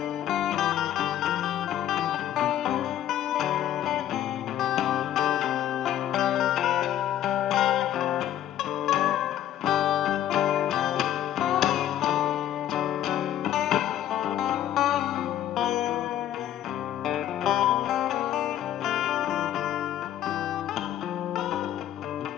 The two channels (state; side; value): quieter; right; 11.7 dB